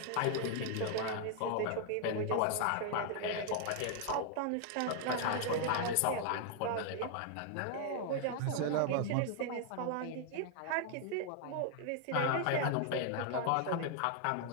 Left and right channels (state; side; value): different; both; correlation 0.00